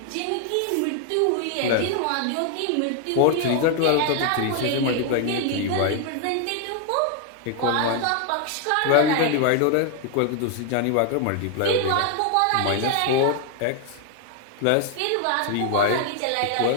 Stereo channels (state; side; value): different; both; correlation 0.00